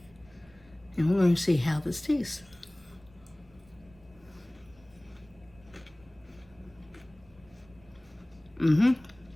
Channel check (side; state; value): right; noise; rumble, 26 dB below the sound